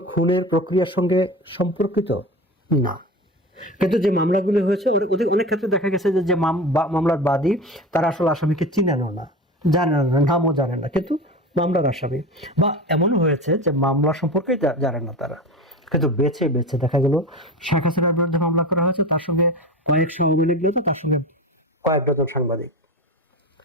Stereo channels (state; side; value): normal; both; correlation 0.29